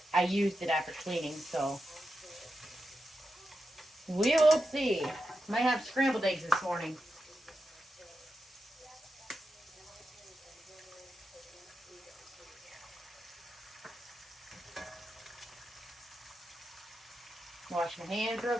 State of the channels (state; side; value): normal; both; correlation 0.88